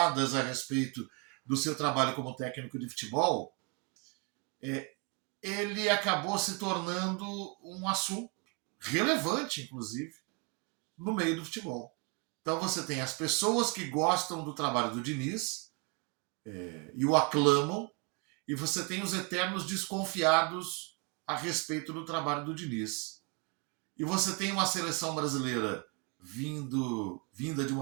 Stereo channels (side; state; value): left; quieter; 29.6 dB